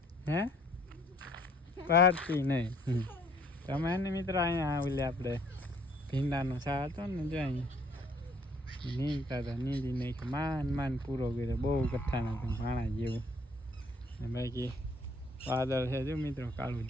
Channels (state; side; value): normal; both; correlation 0.61